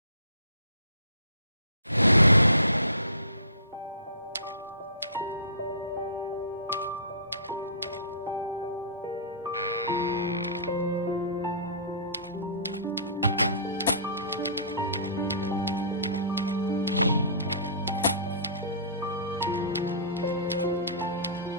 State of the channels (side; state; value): both; inverted; correlation -0.42